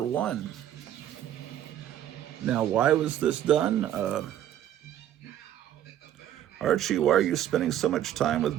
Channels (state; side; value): quieter; left; 11.2 dB